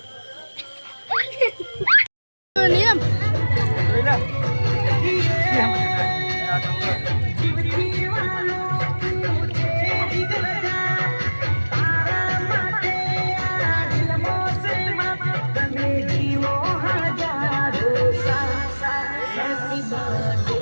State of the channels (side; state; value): both; inverted; correlation -1.00